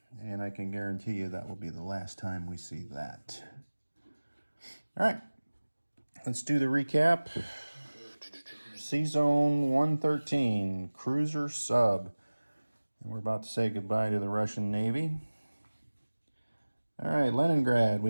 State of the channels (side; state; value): both; inverted; correlation -1.00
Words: and I can guarantee you that will be the last time we see that. All right, let's do the recap. C-Zone 113, cruiser sub. And we're about to say goodbye to the Russian Navy. All right, Leningrad, we